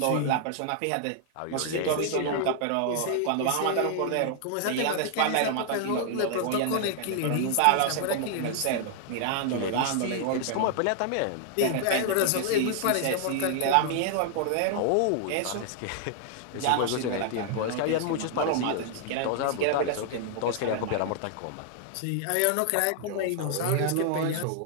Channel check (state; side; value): different; both; correlation 0.00